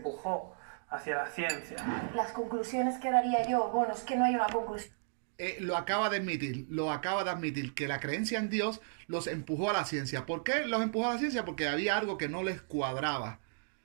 hacia la ciencia. Las conclusiones que daría yo, bueno, es que no hay una conclusión. Lo acaba de admitir, que la creencia en Dios los empujó a la ciencia. ¿Por qué los empujó a la ciencia? Porque había algo que no les cuadraba.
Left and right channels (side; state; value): left; silent; digital silence